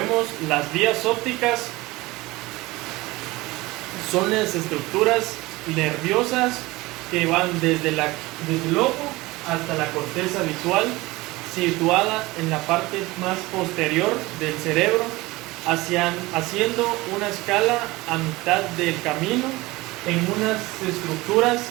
las vías ópticas son las estructuras nerviosas que van desde el ojo hasta la corteza visual, situada en la parte más posterior del cerebro, haciendo una escala a mitad del camino en unas estructuras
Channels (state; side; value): quieter; left; 20.7 dB